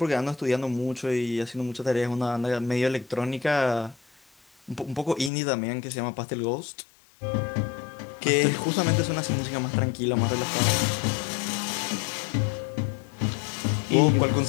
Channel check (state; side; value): drops out; right; at 5.3 s